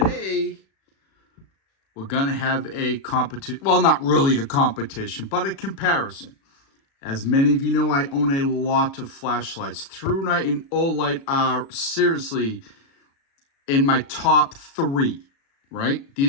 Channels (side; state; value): right; late; 36 ms